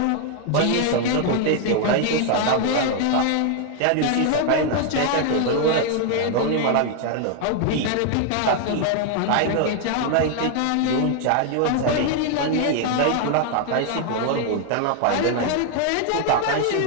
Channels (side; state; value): both; different; correlation 0.00